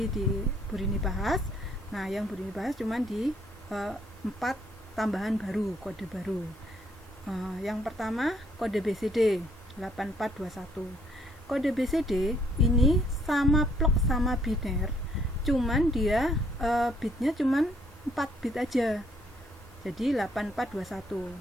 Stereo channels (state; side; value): normal; both; correlation 0.67